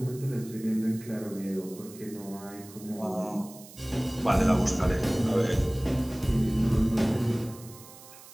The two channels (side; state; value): right; noise; hiss, 19 dB below the sound